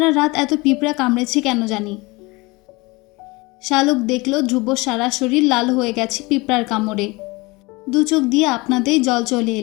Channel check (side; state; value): right; quieter; 24.1 dB